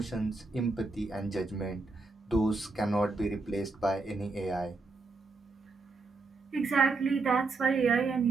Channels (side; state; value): left; quieter; 3.7 dB